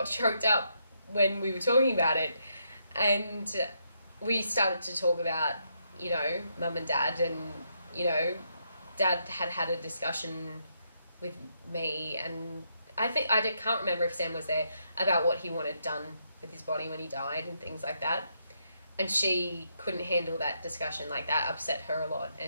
choked up when we were talking about it. And we started to talk about, you know, mum and dad, and, you know, dad had a discussion with me, and I can't remember if Sam was there, about what he wanted done with his body when he died and things like that. And she couldn't handle that discussion. Like, that upset her a lot,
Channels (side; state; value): both; inverted; correlation -0.78